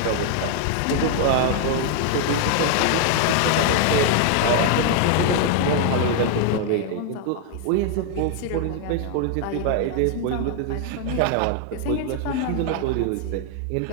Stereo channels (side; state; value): both; different; correlation 0.00